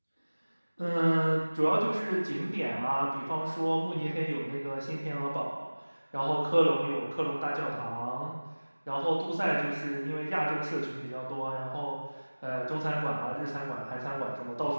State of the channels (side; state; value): both; inverted; correlation -1.00